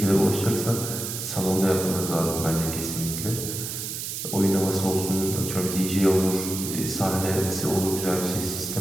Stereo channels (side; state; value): right; noise; hiss, 5 dB below the sound